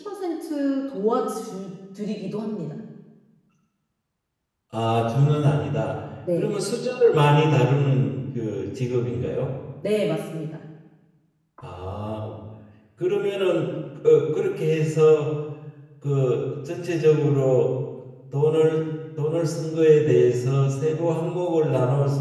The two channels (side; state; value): both; identical; correlation 1.00